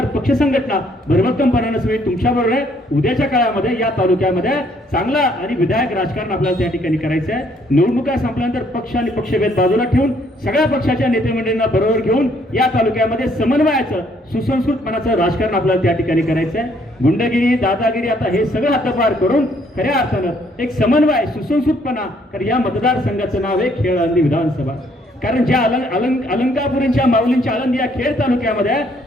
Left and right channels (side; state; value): both; normal; correlation 0.66